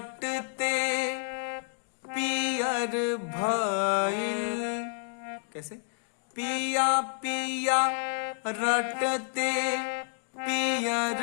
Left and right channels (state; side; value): silent; right; 58 dB below the other